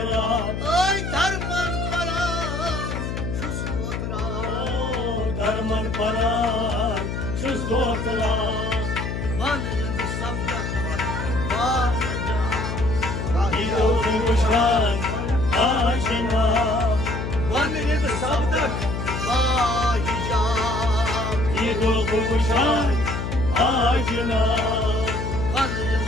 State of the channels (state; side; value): noise; left; hum, 4 dB below the sound